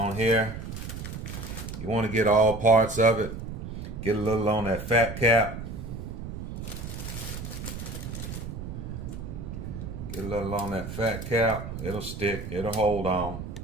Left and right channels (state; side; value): noise; right; rumble, 8 dB below the sound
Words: here. You want to get all parts of it. Get a little on that fat cap. Get a little on that fat cap. It'll stick. It'll hold on.